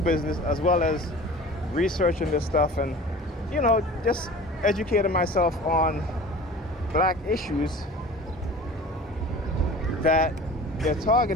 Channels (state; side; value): normal; both; correlation 0.40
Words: business as well as researching this stuff and, just educating myself on black issues, that their